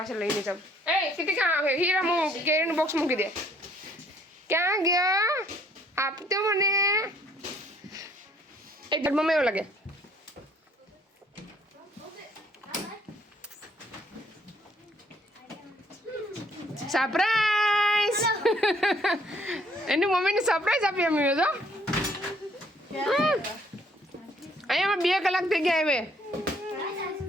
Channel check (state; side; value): normal; both; correlation 0.64